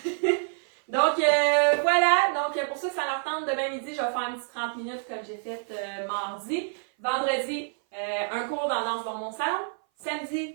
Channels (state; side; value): silent; left; 58 dB below the other